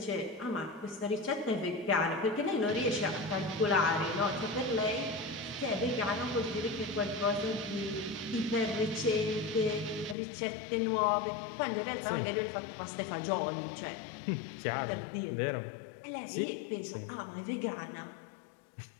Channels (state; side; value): drops out; right; at 10.2 s